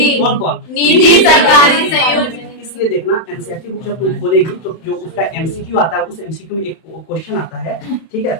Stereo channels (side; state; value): right; late; 31 ms